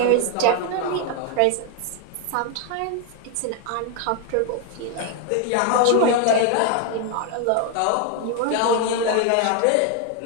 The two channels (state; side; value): different; both; correlation 0.01